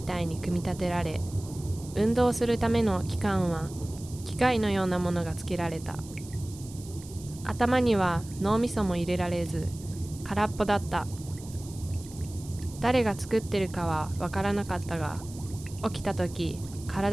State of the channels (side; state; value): right; noise; hiss, 18 dB below the sound